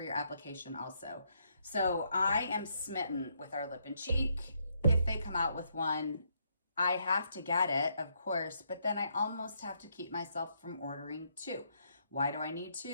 your application also. So I am smitten with our lip and cheek. If they come out with one, I have to get it, of course, but then I almost have to keep myself from ordering two. Why do I need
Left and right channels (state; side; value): inverted; both; correlation -0.75